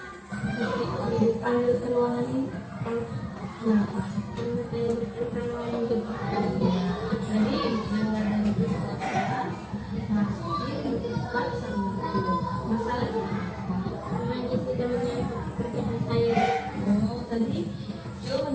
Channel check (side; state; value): both; identical; correlation 1.00